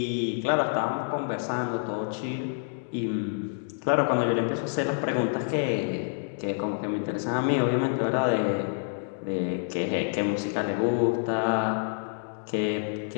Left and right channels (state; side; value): silent; right; digital silence